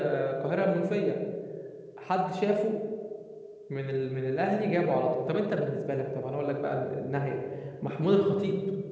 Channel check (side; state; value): both; identical; correlation 1.00